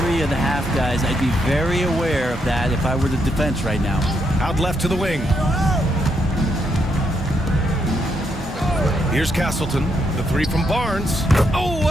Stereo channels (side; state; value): both; normal; correlation 0.78